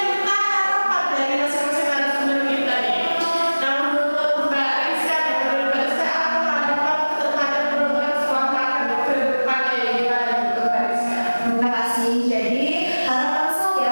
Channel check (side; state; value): both; inverted; correlation -1.00